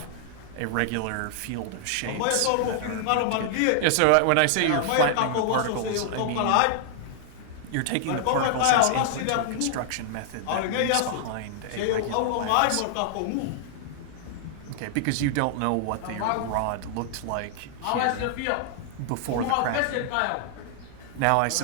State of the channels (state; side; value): different; both; correlation 0.00